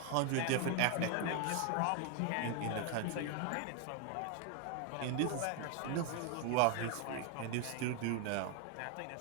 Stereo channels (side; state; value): both; different; correlation 0.01